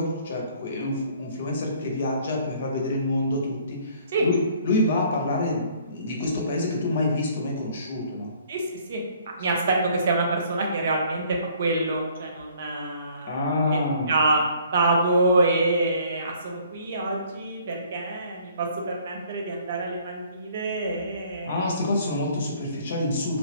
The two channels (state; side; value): inverted; both; correlation -0.58